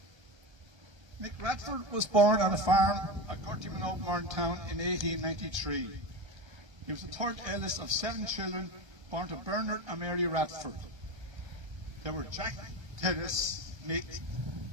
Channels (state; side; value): late; left; 1.3 ms